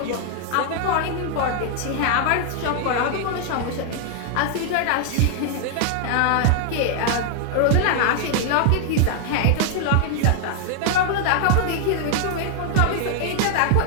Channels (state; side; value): different; both; correlation 0.00